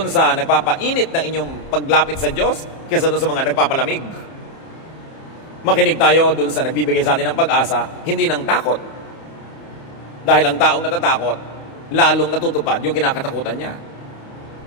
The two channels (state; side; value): late; right; 30 ms